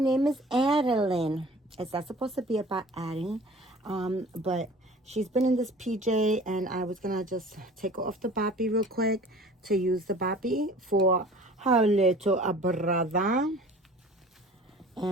name is Adeline. It's not supposed to be about Addie, but she's been in this PJ and I was gonna just take her off the boppy real quick to use the boppy for her little brother.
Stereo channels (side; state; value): both; normal; correlation 0.46